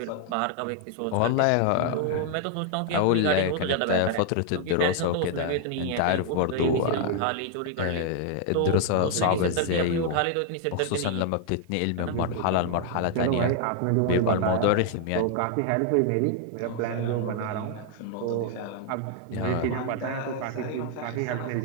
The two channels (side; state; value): both; different; correlation 0.00